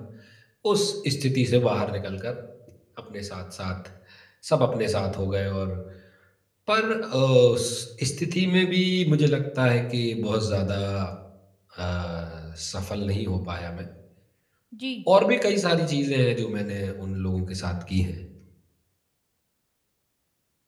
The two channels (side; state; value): both; identical; correlation 1.00